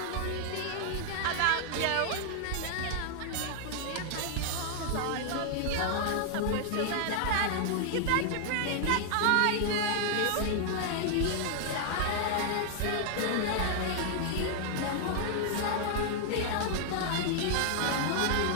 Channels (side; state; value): both; different; correlation 0.00